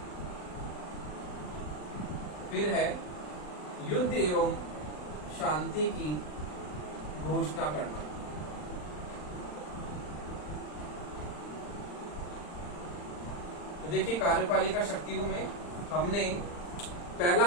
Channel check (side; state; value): right; late; 40 ms